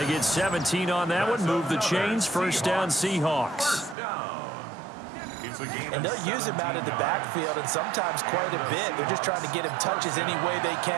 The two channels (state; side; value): drops out; left; at 4.0 s